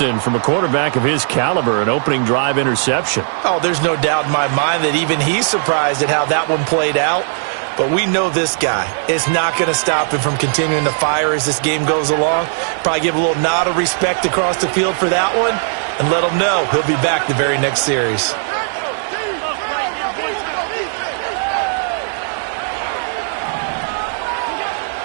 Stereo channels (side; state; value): left; silent; 68 dB below the other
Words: from a quarterback of his caliber, an opening drive interception. Oh, there's no doubt in my mind that even he's surprised at how that one played out. But we know this guy is not going to stop him from continuing to fire as this game goes along. Probably give a little nod of respect across the field for that one and let him know he'll be back the very next series.